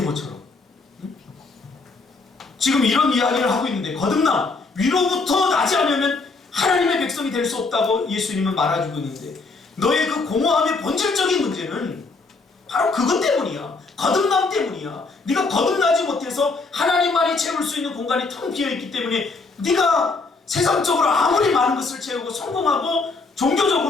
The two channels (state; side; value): quieter; right; 3.9 dB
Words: 지금 이런 이야기를 하고 있는데, 거듭남, 위로부터 나지 않으면 하나님의 백성이 될 수 없다고 예수님은 말해주고 있는데, 너의 그 공허함의 본질적인 문제는 바로 그것 때문이야. 거듭남 때문이야. 네가 거듭나지 못해서 하나님만이 채울 수 있는 공간이 텅 비어있기 때문에 네가 세상적으로 아무리 많은 것을 채우고 성공하고